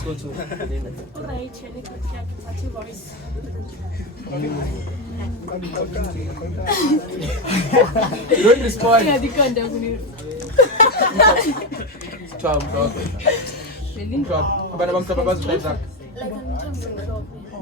go to. You don't respond.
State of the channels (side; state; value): both; normal; correlation 0.13